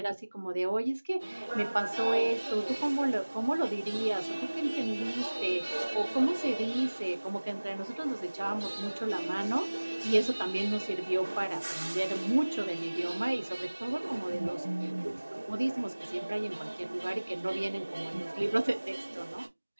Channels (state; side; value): inverted; both; correlation -1.00